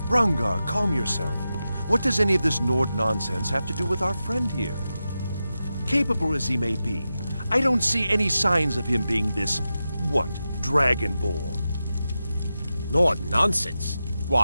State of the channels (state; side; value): inverted; both; correlation -0.91